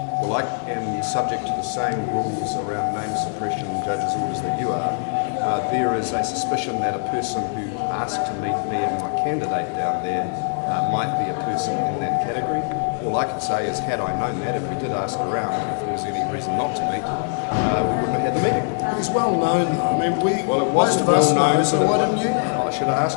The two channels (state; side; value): silent; right; digital silence